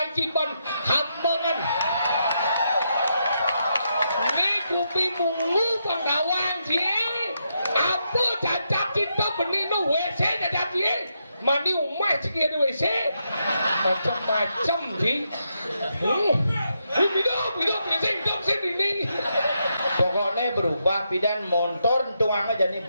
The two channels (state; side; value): inverted; both; correlation -0.82